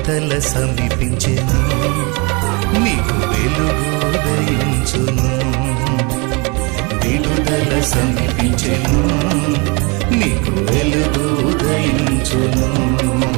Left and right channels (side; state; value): left; quieter; 30.0 dB